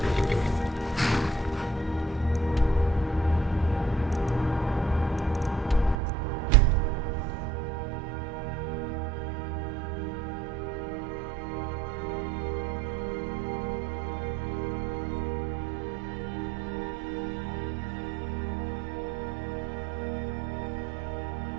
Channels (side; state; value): left; drops out; at 6.0 s